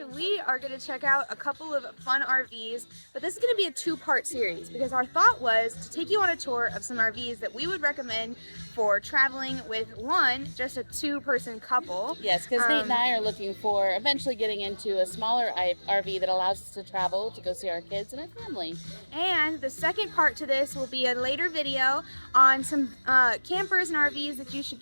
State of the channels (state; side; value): inverted; both; correlation -1.00